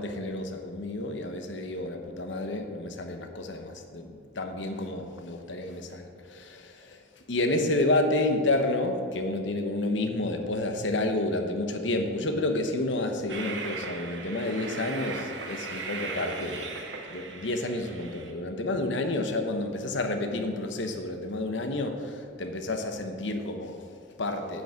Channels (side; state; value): both; normal; correlation 0.14